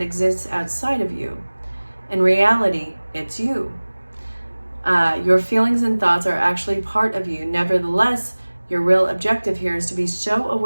exists outside of you. In reality, it's you. Your feelings and thoughts are actually part of you. Nevertheless, your real objective here is to be so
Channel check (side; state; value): both; inverted; correlation -1.00